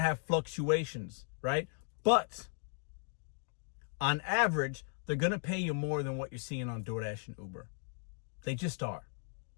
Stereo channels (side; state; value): right; silent; 54 dB below the other